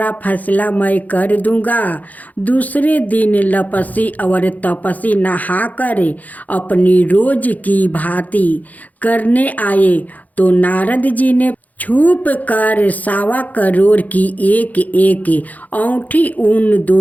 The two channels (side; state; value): right; late; 0.078 ms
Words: फैसला मैं कर दूंगा। दूसरे दिन लपसी और तपसी नहाकर अपनी रोज की भांति करने आए तो नारद जी ने छुप कर 1.25 करोड़ की एक औंठी उन